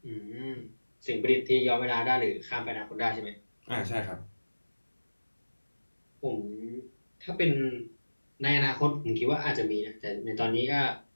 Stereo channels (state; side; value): inverted; both; correlation -1.00